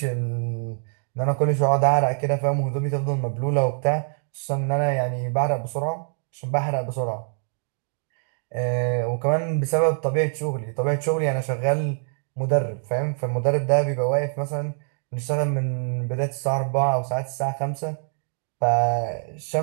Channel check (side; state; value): left; silent; 62 dB below the other